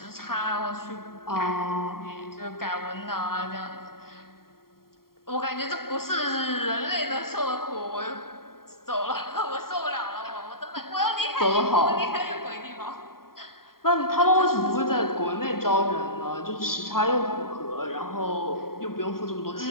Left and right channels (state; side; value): late; right; 0.93 ms